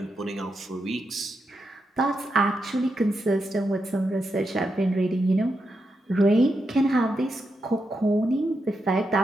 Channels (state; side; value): normal; both; correlation 0.85